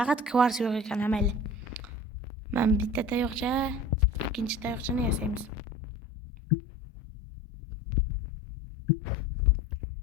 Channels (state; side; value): normal; both; correlation 0.39